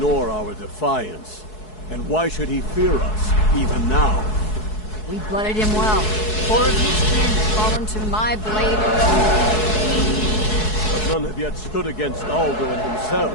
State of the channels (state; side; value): late; right; 4.7 ms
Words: our defiance. And why should he fear us, even now? We blooded him well. 4 of his kin have fallen to my blade alone. But none have yet stood against Alduin himself.